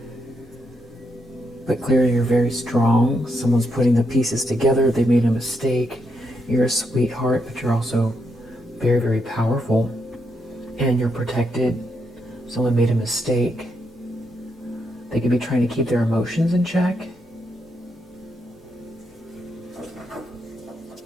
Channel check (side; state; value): both; normal; correlation 0.80